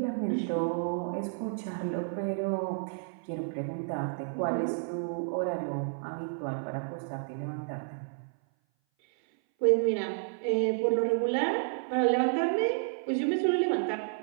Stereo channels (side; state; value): left; silent; 57 dB below the other